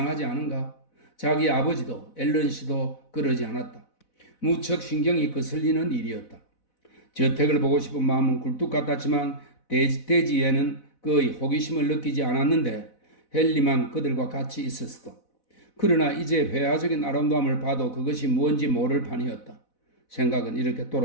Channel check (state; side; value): late; right; 4.0 ms